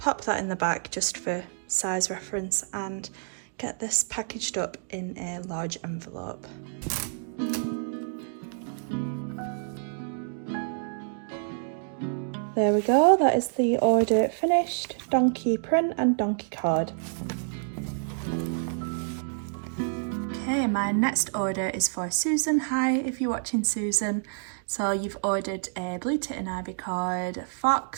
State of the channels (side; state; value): left; silent; digital silence